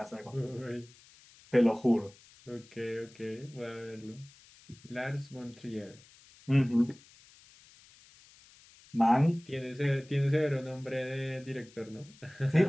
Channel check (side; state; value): left; noise; hiss, 25 dB below the sound